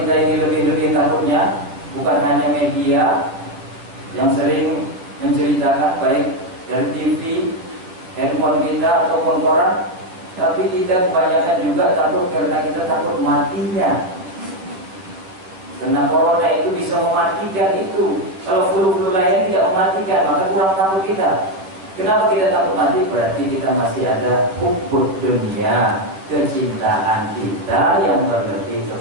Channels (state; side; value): late; left; 11 ms